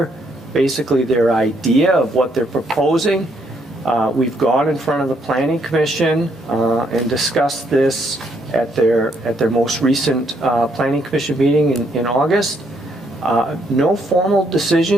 basically their idea of what they're proposing. We've gone in front of the Planning Commission and discussed this at their most recent Planning Commission meeting in August. No formal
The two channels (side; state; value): both; normal; correlation 0.72